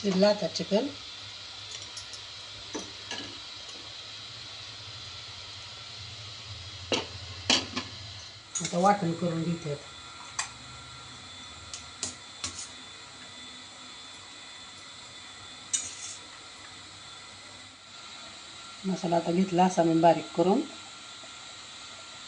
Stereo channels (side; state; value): both; identical; correlation 1.00